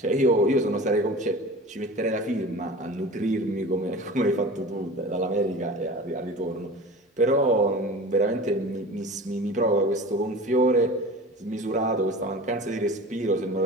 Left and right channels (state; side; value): normal; both; correlation 0.36